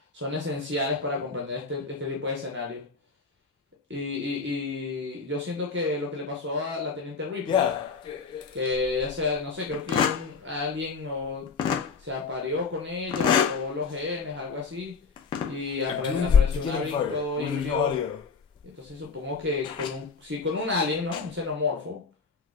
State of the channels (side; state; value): right; quieter; 4.9 dB